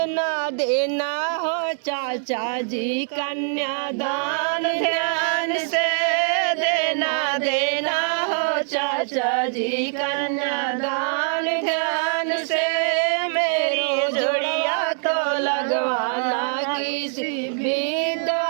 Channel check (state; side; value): silent; left; digital silence